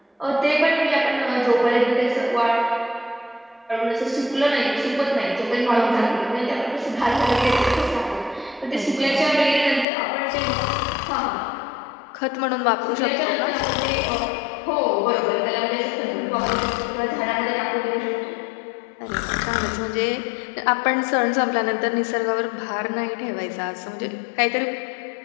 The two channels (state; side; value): drops out; right; at 9.9 s